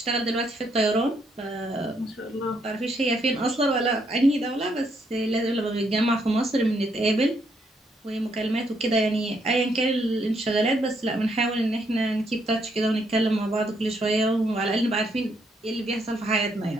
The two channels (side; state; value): both; normal; correlation 0.74